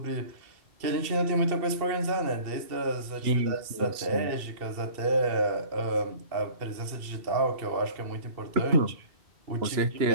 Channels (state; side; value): late; left; 2.7 ms